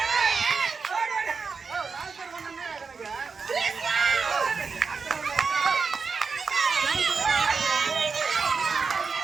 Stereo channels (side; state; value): left; quieter; 5.0 dB